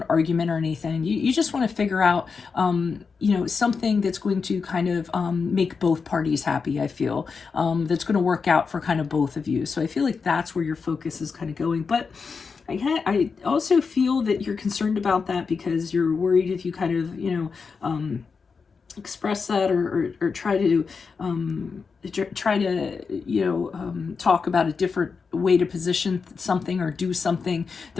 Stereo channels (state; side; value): quieter; right; 5.2 dB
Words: argument or anything. You just want to figure out something that's going to kind of make both parties happy, I feel, that's going to work out for kind of both of you. So I feel like that's where your focus is kind of going. But I also feel that you're concerned about that because you're worried if you kind of, express that or try to talk about a different way to position something or do something,